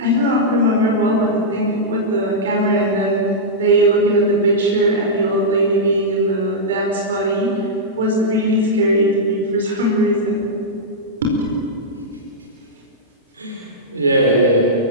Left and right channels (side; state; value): both; normal; correlation -0.10